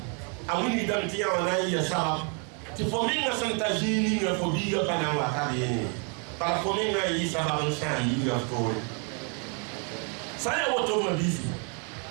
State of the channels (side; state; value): left; quieter; 37.8 dB